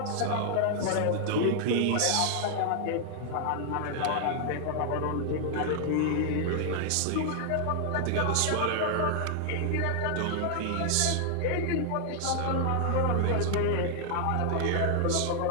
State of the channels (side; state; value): both; different; correlation 0.00